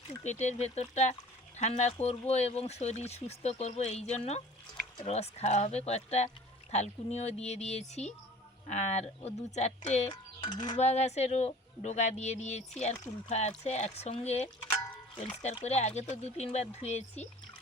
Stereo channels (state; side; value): normal; both; correlation 0.46